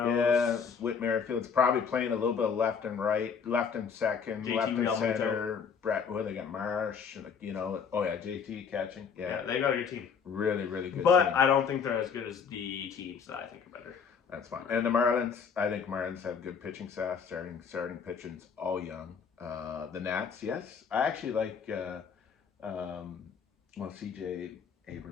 Whit Merrifield's probably playing a little bit of left and right, left and second, JT left and Realmuto. center. Brett, they got Marsh, oh yeah, JT catching, yeah, they got a good team. Really, really good. But team. I don't think they're as good as the teams that I think are better. That's fine. And the Marlins, I think Marlins have good pitching staff, starting pitchers, all young. The Nats, yes, I actually like. CJ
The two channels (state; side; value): quieter; right; 6.4 dB